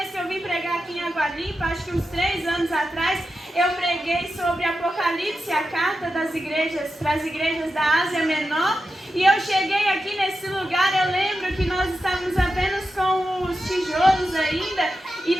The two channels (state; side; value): normal; both; correlation 0.90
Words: que eu vim pregar aqui em Água Limpa, acho que uns 3 anos atrás, eu preguei sobre Apocalipse, a carta das igrejas, para as igrejas da Ásia Menor. E eu cheguei aqui nesse lugar, eu lembro que nós estávamos apenas com os tijolos ainda. E